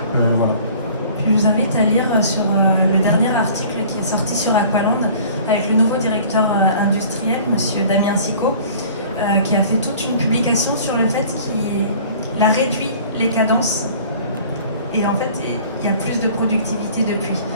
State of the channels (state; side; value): inverted; both; correlation -0.48